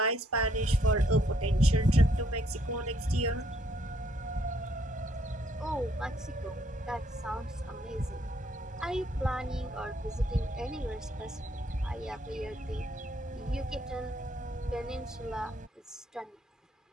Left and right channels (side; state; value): both; normal; correlation 0.69